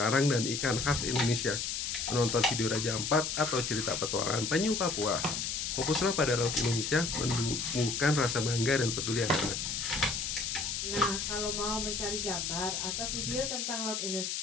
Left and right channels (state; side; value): noise; left; hiss, 2 dB below the sound